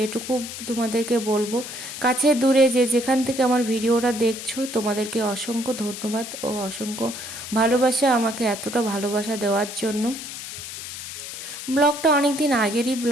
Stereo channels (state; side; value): noise; left; hiss, 9 dB below the sound